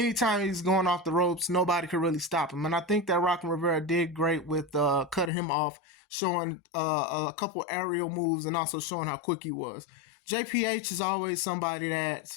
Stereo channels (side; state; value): right; drops out; at 5.3 s